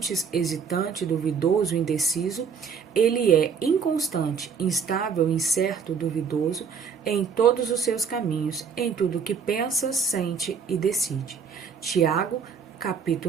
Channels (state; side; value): quieter; left; 6.3 dB